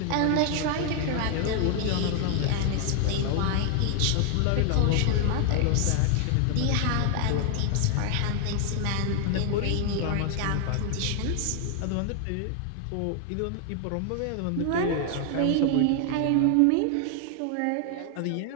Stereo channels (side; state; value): both; different; correlation 0.00